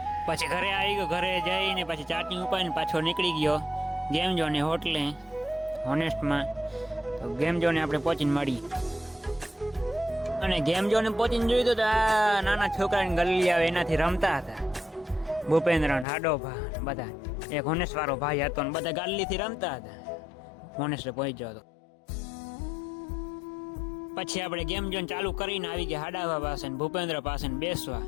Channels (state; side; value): drops out; right; at 16.1 s